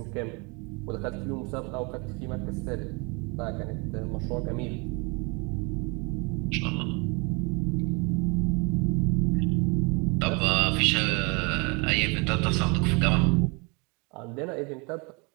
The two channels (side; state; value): left; quieter; 30.3 dB